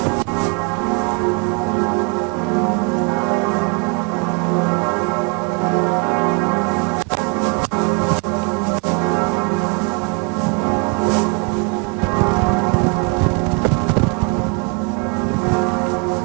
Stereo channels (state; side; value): quieter; left; 35.2 dB